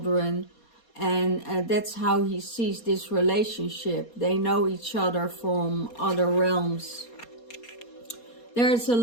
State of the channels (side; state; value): right; late; 4.2 ms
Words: and that's how he sees this relationship. They know each other from other realms. There is a